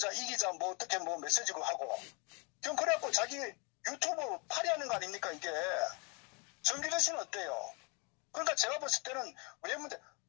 이기자 뭐 어떻게 뭐 메시지고 하고 그럼 그래갖고 자기 유튜브 파리하는 거 아닙니까 이게. 정기조 씨는 어때요? 그러니까 제가 봤을 때는 왜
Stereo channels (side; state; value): right; quieter; 32.7 dB